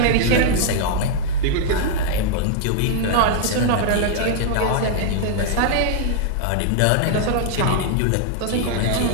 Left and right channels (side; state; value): both; different; correlation -0.01